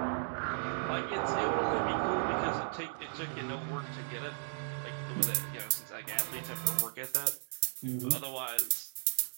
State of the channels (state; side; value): silent; left; digital silence